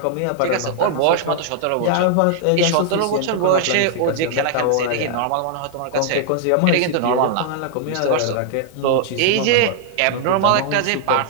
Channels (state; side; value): different; both; correlation -0.01